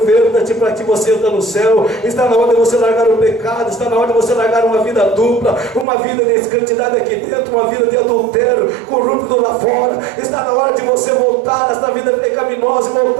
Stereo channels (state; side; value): drops out; left; at 5.9 s